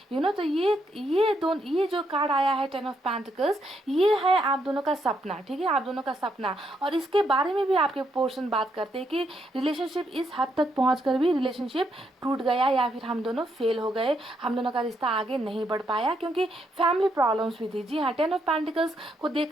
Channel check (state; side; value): normal; both; correlation 0.77